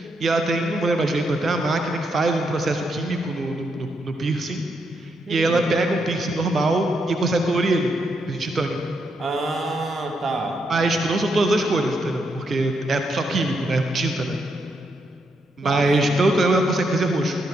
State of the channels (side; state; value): both; normal; correlation 0.79